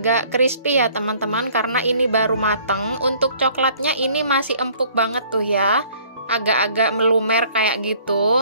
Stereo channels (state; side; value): inverted; both; correlation -0.56